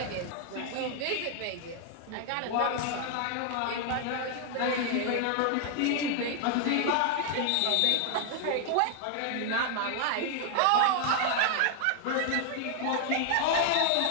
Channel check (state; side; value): different; both; correlation 0.00